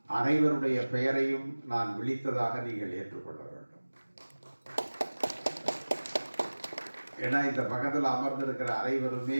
அனைவருடைய பெயரையும் நான் விழித்ததாக நீங்கள் ஏற்றுக்கொள்ள வேண்டும். ஏன்னா இந்த பக்கத்தில் அமர்ந்திருக்கிற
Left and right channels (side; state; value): both; inverted; correlation -1.00